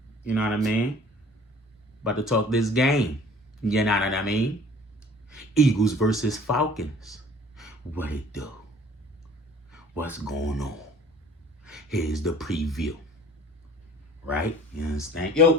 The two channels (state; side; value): normal; both; correlation 0.49